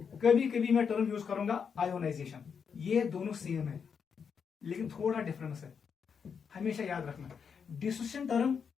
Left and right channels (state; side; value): quieter; right; 6.5 dB